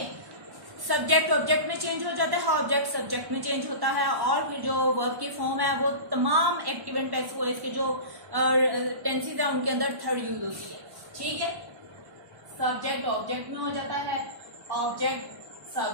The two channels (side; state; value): left; late; 1.1 ms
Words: सब्जेक्ट ऑब्जेक्ट में चेंज हो जाता है, ऑब्जेक्ट सब्जेक्ट में चेंज होता है, और फिर जो वर्ब की फॉर्म है वो तमाम एक्टिव एंड पैसिव वॉइस के जो टेंसेस है उनके अंदर थर्ड यूज होती है। ठीक है, सब्जेक्ट ऑब्जेक्ट में हो जाता है, ऑब्जेक्ट